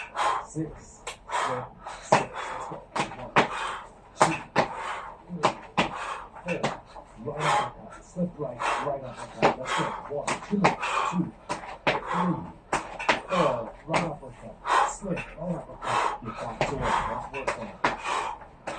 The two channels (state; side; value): identical; both; correlation 1.00